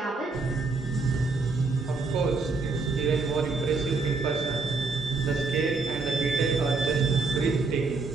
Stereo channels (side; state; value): left; quieter; 3.9 dB